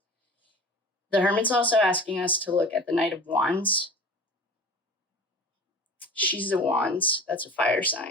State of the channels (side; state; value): both; normal; correlation 0.38